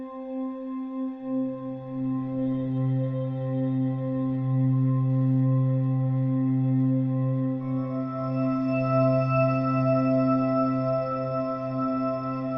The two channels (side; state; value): both; identical; correlation 1.00